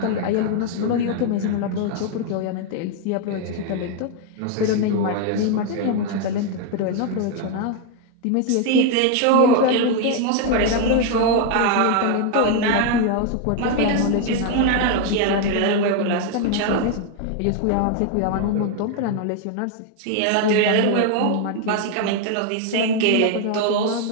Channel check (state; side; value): different; both; correlation 0.01